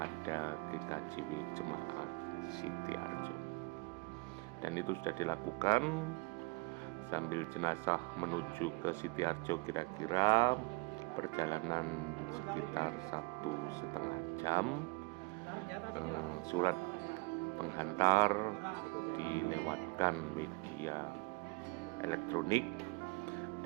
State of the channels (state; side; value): quieter; left; 27.7 dB